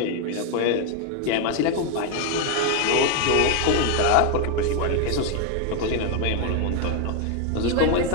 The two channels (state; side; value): different; both; correlation 0.01